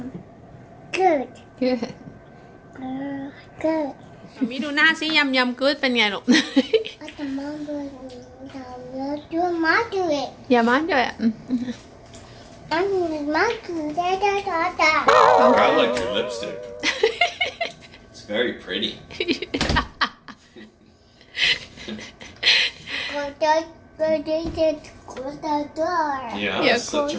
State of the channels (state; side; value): identical; both; correlation 1.00